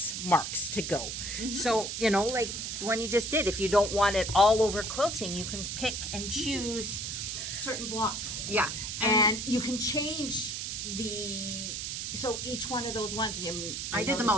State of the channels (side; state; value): right; noise; hiss, 4 dB below the sound